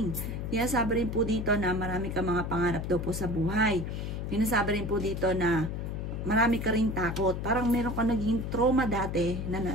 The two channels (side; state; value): left; noise; hum, 4 dB below the sound